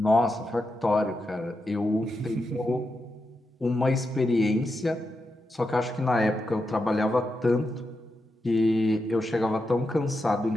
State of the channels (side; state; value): both; normal; correlation 0.87